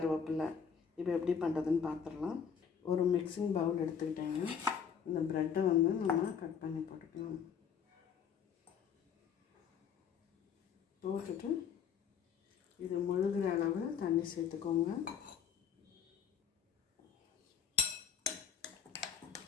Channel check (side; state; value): right; quieter; 7.2 dB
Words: இப்போ எப்படி பண்ணுறதுன்னு பார்த்துடலாம். ஒரு மிக்சிங் பவுல் எடுத்துக்கிட்டேங்க. இந்த ப்ரெட்டை வந்து நம்ம கட் பண்ணி போட்டுக்கலாம். போட்டுட்டு இது முழுகிற அளவு தண்ணி சேர்த்துக்கோங்க.